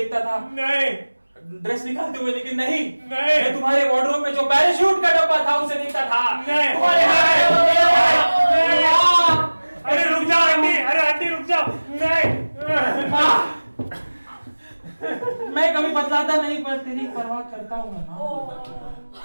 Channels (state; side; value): inverted; both; correlation -1.00